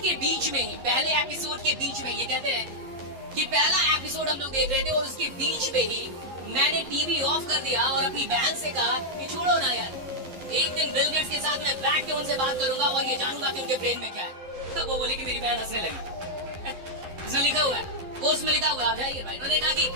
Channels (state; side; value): late; left; 11 ms